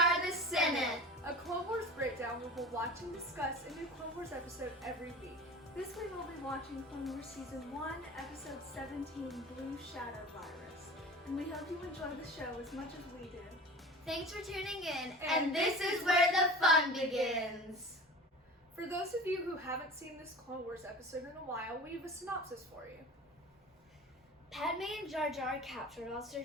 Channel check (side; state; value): both; normal; correlation 0.36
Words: the Senate, a Clone Wars breakdown where we'll watch and discuss a new Clone Wars episode every week. This week we'll be watching Clone Wars Season 1, Episode 17, Blue Shadow Virus. And we hope you enjoy the show as much as we do. Thanks for tuning in, and this is where the fun begins. For those of you who haven't seen this Clone Wars episode in a while, we have a synopsis for you. Padme and Jar Jar are captured while